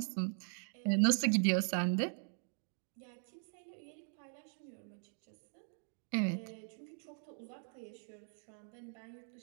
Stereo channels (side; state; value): left; silent; 51 dB below the other